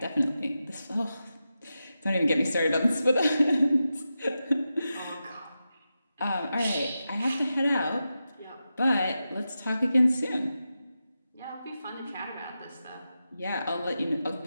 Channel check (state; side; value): inverted; both; correlation -0.90